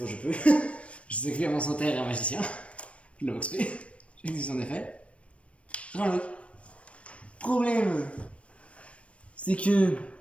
je peux. Je sais que mon santé est un magicien. Je l'ai XP. J'ai dit son effet. Reload. Problème, c'est que.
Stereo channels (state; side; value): late; right; 0.062 ms